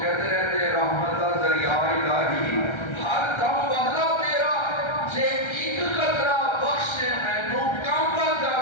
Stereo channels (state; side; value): late; right; 1.3 ms